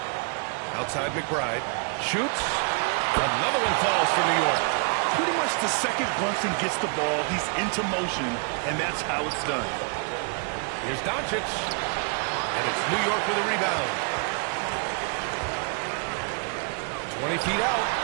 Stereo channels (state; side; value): quieter; left; 37.4 dB